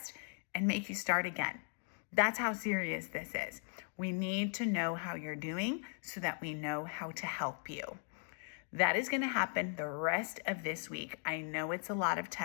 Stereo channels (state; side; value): silent; right; 52 dB below the other